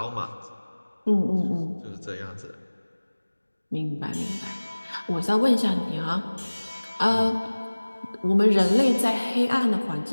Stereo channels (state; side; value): inverted; both; correlation -1.00